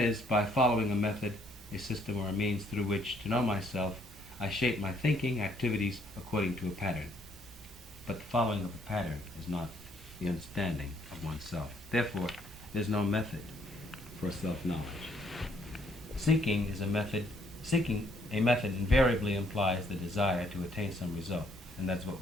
by following a method, a system, or a means through which to know myself, I shape my thinking, activities according to a pattern. But the following of a pattern is not the understanding of oneself. Therefore, there's no method for self-knowledge. Seeking a method invariably implies the desire to attain some result, and that's what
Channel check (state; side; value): normal; both; correlation 0.67